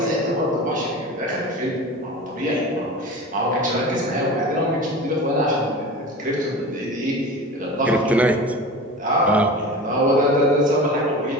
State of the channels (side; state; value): both; normal; correlation 0.33